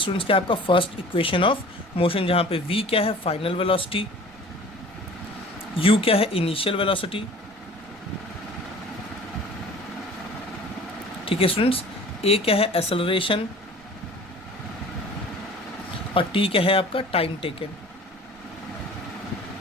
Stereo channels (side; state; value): right; noise; rumble, 28 dB below the sound